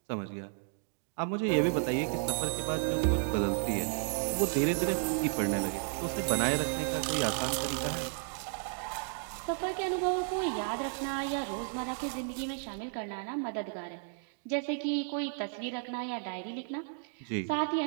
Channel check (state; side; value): silent; left; digital silence